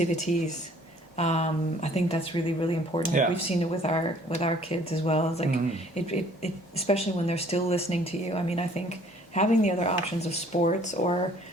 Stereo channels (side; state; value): both; normal; correlation 0.57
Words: I think that's really, really important. Yeah. We've seen it with our kids as well. It's like it especially when they're still listening to you. I mean, I think having the other options of sports or